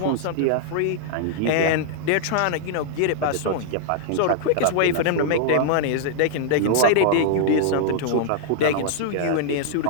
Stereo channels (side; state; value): both; different; correlation -0.01